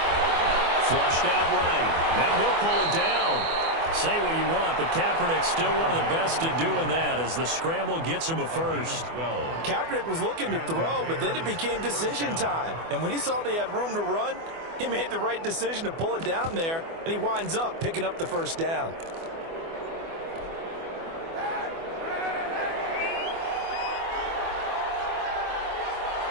Flushed out right. Now he'll pull it down. Say what you want, but Kaepernick's still one of the best at doing that as the scramble gets him a first. Kaepernick was looking to throw, but then it became decision time. And when he saw they had room to run, he made the right decision to pull it down there, and he winds up picking up the first down.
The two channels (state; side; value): late; left; 24 ms